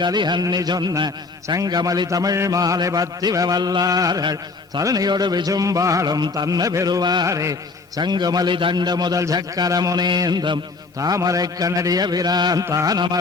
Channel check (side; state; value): right; quieter; 4.0 dB